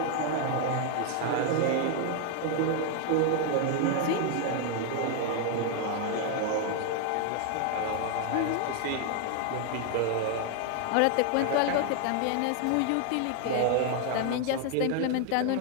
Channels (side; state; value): both; different; correlation 0.00